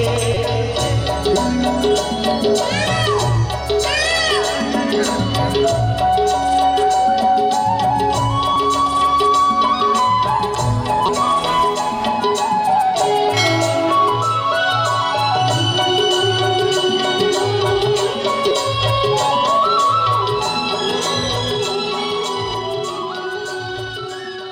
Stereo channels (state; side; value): identical; both; correlation 1.00